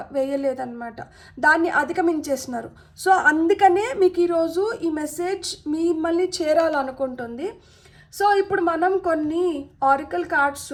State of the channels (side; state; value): both; identical; correlation 1.00